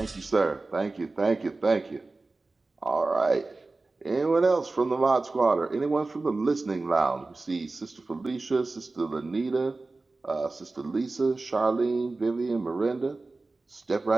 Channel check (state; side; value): quieter; left; 3.4 dB